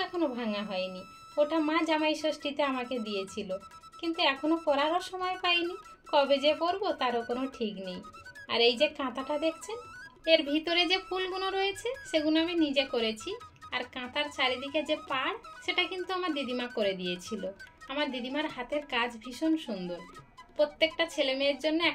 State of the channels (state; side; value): identical; both; correlation 1.00